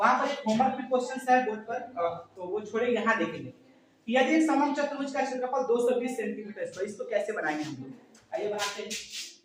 पर एक होमवर्क भी क्वेश्चन है बोर्ड पर तो वो छोड़े, यहाँ देखेंगे यदि एक समलंब चतुर्भुज का क्षेत्रफल 220 सेंटीमीटर है तो इसको कैसे बनाएंगे हम लोग। आइए बनाते हैं।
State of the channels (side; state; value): both; identical; correlation 1.00